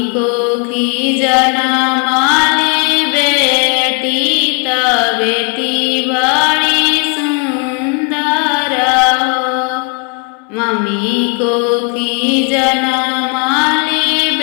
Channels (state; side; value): quieter; right; 35.0 dB